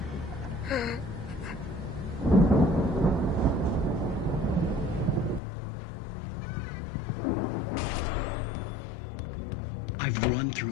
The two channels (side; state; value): right; drops out; at 5.4 s